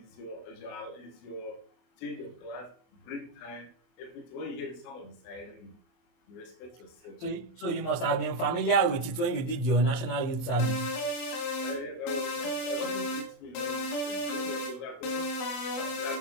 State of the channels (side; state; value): right; late; 23 ms